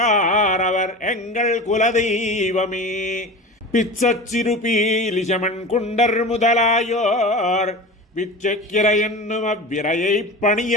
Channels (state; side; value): normal; both; correlation 0.31